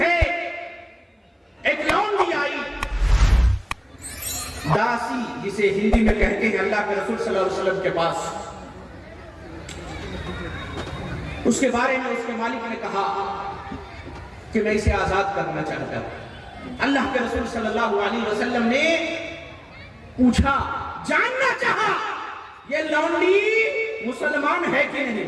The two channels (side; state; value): both; identical; correlation 1.00